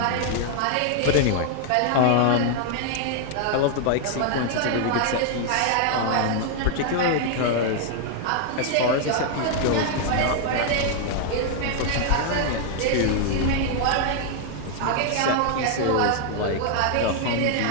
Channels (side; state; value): both; different; correlation 0.00